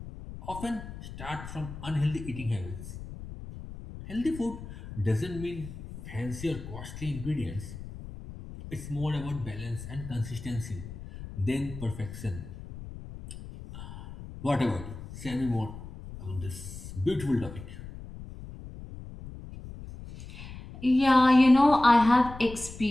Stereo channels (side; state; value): left; noise; rumble, 12 dB below the sound